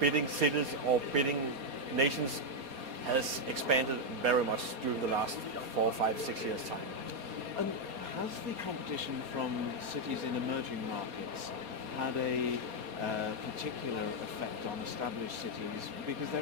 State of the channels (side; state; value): left; late; 4.2 ms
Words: cities or bidding nations has expanded very much during the last 4, 5, 6 years' time. And has the competition from cities in emerging markets had a particular effect on established cities? Because